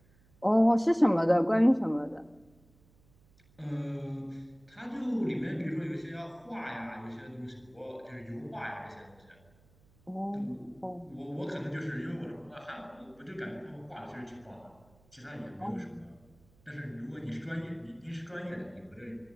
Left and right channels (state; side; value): noise; right; hum, 30 dB below the sound